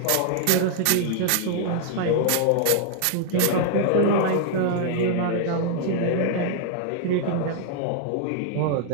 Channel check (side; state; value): both; different; correlation 0.00